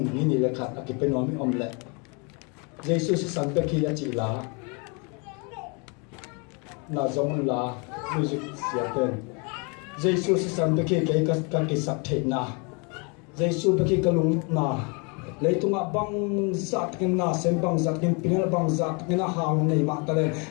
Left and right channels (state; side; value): quieter; right; 33.1 dB